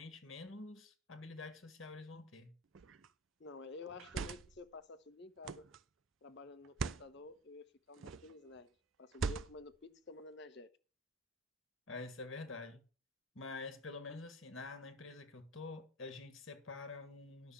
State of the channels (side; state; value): both; normal; correlation 0.39